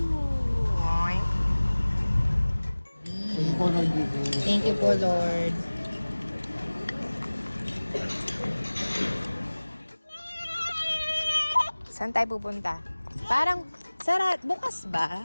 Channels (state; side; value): inverted; both; correlation -1.00